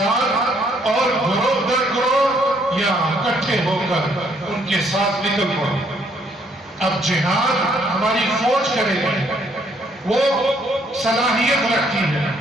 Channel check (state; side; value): normal; both; correlation 0.68